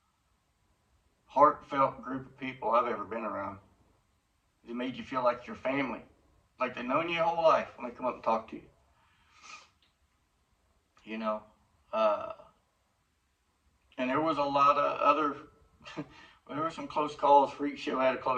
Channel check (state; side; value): identical; both; correlation 1.00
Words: heartfelt group of people I've ever been around. It made you feel like your family, like they've known you your whole life when they come up and talk to you. You know, and there was a lot of other, there were some close calls. Freak Show had a